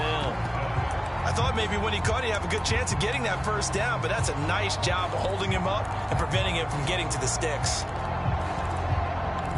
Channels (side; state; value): both; identical; correlation 1.00